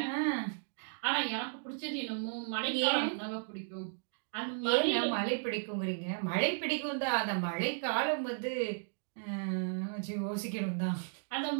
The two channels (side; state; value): left; silent; digital silence